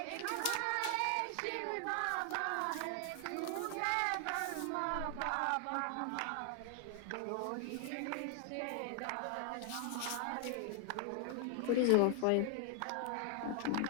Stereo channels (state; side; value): different; both; correlation 0.00